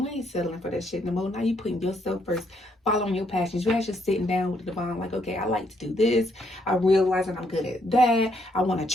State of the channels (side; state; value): both; normal; correlation 0.72